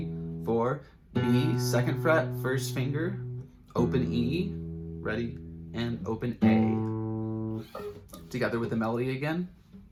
4, B, second fret, first finger, open E, ready, and open A. Together with the melody again.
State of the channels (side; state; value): both; identical; correlation 1.00